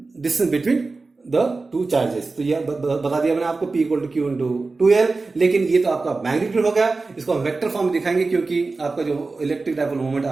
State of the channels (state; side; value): quieter; left; 3.8 dB